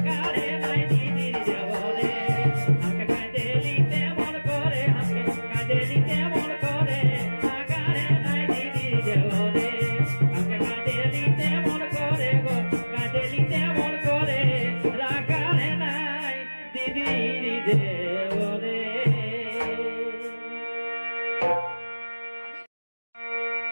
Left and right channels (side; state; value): both; inverted; correlation -1.00